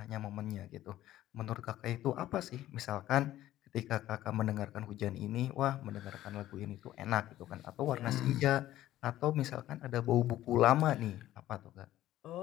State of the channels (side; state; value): right; quieter; 14.0 dB